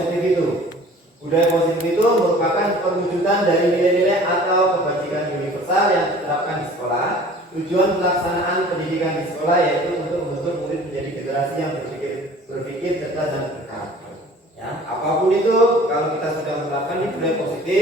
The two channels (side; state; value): both; normal; correlation 0.48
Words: itu? Budaya positif itu merupakan perwujudan dari nilai-nilai atau kebajikan universal yang diterapkan di sekolah. Tujuan pelaksanaan pendidikan di sekolah yaitu untuk membentuk murid menjadi generasi yang berpikir cerdas dan berkarakter. Ya, apapun itu, kalau kita sudah menerapkan ini budaya